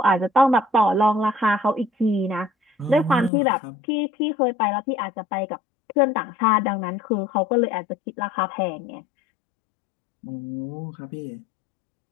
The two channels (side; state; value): right; drops out; at 3.3 s